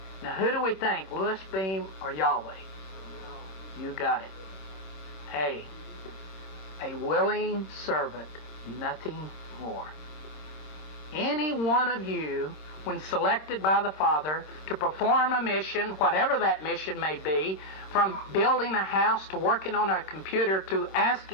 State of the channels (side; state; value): right; late; 26 ms